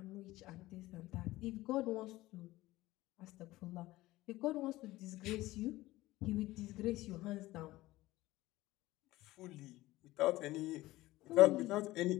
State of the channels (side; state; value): right; quieter; 17.8 dB